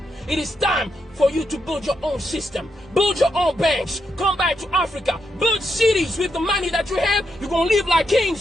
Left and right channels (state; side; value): normal; both; correlation 0.82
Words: It is time for you to build your own system. Build your own banks. Come back to Africa. Build cities with the money that you have. You're going to live like